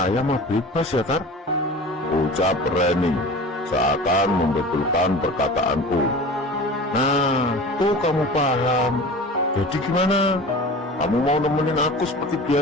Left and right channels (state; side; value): normal; both; correlation 0.37